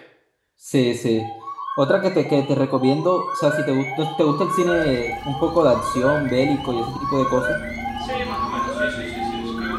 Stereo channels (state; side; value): identical; both; correlation 1.00